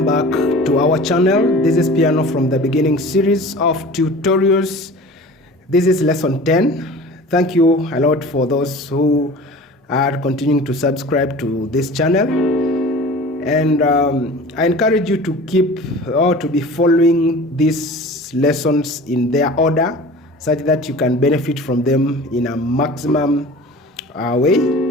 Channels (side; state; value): both; normal; correlation 0.40